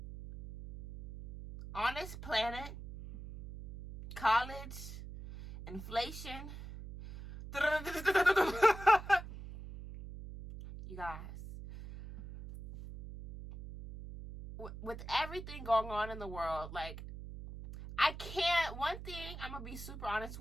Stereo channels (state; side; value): noise; right; hum, 11 dB below the sound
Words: on this planet, college, inflation, you guys, with everything going on in the world, like, one thing I'm gonna be super honest